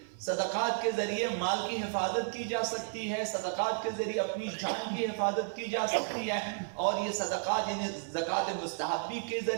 صدقات کے ذریعے مال کی حفاظت کی جا سکتی ہے، صدقات کے ذریعے اپنی جان کی حفاظت کی جا سکتی ہے، اور یہ صدقات یعنی زکوٰۃ مستحبی کے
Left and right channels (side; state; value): left; silent; 56 dB below the other